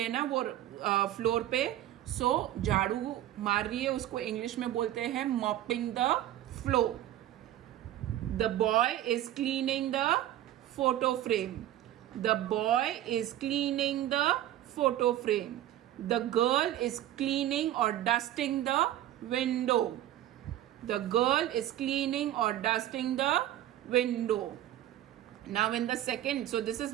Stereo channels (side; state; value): left; quieter; 13.2 dB